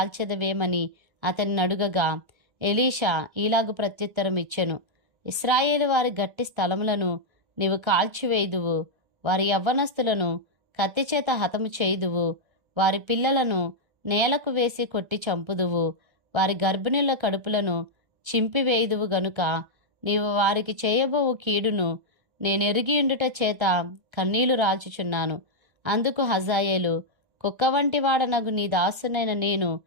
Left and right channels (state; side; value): late; left; 1.3 ms